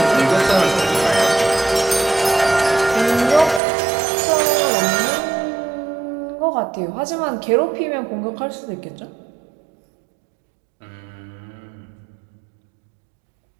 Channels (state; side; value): drops out; left; at 3.6 s